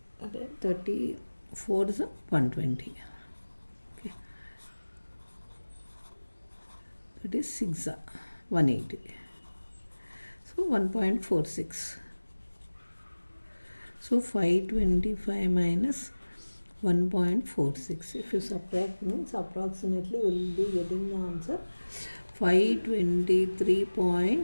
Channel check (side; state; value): both; inverted; correlation -1.00